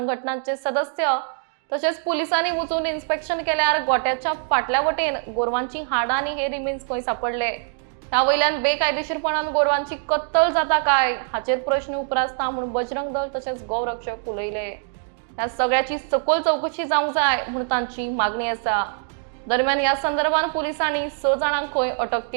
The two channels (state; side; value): silent; left; digital silence